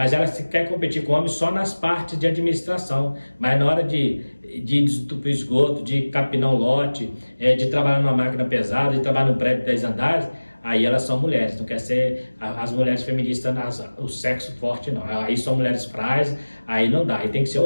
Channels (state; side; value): inverted; both; correlation -1.00